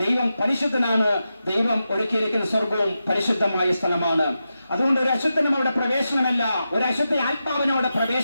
ദൈവം പരിശുദ്ധനാണ്. ദൈവം ഒരുക്കിയിരിക്കുന്ന സ്വർഗവും പരിശുദ്ധമായ സ്ഥലമാണ്. അതുകൊണ്ട് ഒരു അശുദ്ധനും അവിടെ പ്രവേശനമല്ല, ഒരു അശുദ്ധ ആത്മാവിനും അവിടെ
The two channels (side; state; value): both; inverted; correlation -0.89